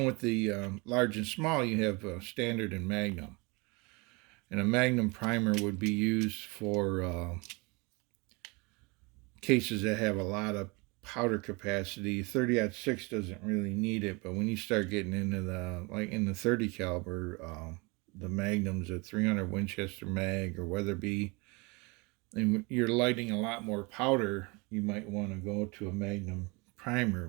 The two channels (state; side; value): quieter; left; 27.9 dB